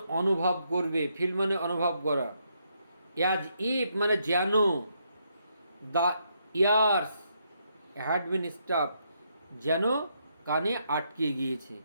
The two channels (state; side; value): inverted; both; correlation -0.77